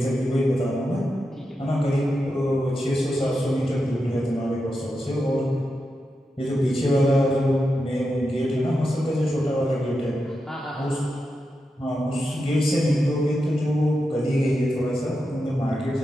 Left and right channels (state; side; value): normal; both; correlation 0.88